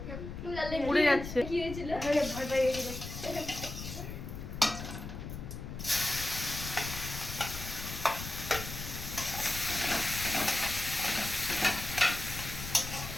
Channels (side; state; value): left; noise; rumble, 8 dB below the sound